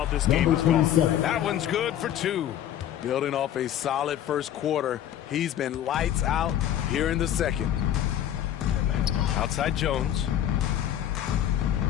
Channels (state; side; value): quieter; right; 11.0 dB